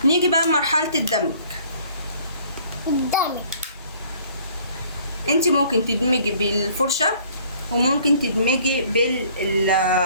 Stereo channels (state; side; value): inverted; both; correlation -0.56